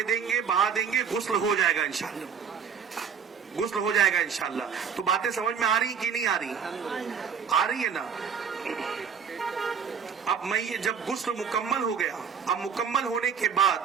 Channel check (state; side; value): quieter; left; 6.8 dB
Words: गुस्ल हो जाएगा इंशाल्लाह, गुस्ल हो जाएगा इंशाल्लाह। तो बातें समझ में आ रही कि नहीं आ रही? आ रही है ना। अब मैयत जब गुस्ल मुकम्मल हो गया, अब मुकम्मल होने के बाद